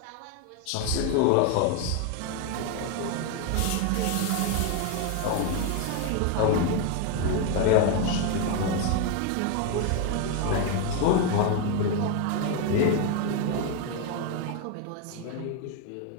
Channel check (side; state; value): both; different; correlation 0.01